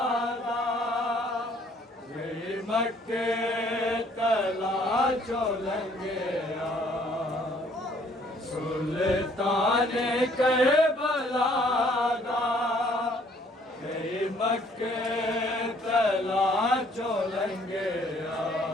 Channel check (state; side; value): normal; both; correlation 0.61